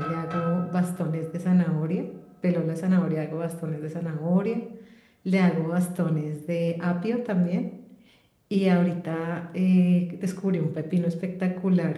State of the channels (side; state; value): both; identical; correlation 1.00